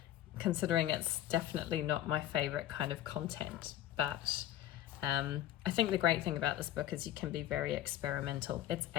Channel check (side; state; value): right; quieter; 12.9 dB